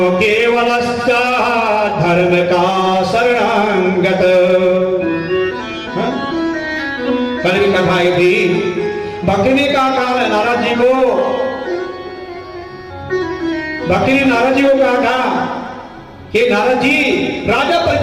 केवलश्च धर्म का शरणागत। कल की कथा थी, भक्ति ने कहा नारद जी को, भक्ति ने नारद जी को कहा था कि नारद जी, राजा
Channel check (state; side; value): identical; both; correlation 1.00